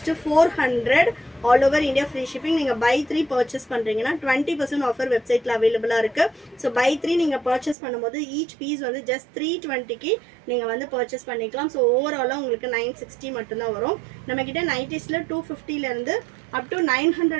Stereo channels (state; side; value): drops out; left; at 7.8 s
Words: 400. All over India free shipping. நீங்கள் பை 3 பர்ச்சேஸ் பண்ணுறீங்கன்னா 20% ஆஃபர் வெப்சைட்டில் அவைலபிளாக இருக்குது. ஸோ பை 3 நீங்கள் பர்ச்சேஸ் பண்ணும்போது ஈச் பீஸ் வந்து ஜஸ்ட் 320க்கு நீங்கள் வந்து பர்ச்சேஸ் பண்ணிக்கலாம். ஸோ ஓவராலாக உங்களுக்கு 960 மட்டும்தான் வரும். நம்மக்கிட்ட நைட்டிஸில் 250லேருந்து அப் டு